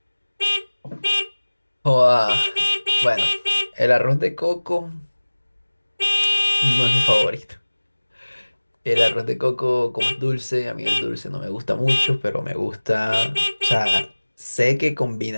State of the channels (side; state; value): both; inverted; correlation -1.00